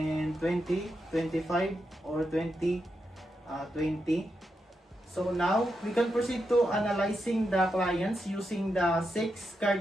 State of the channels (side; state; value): both; normal; correlation 0.85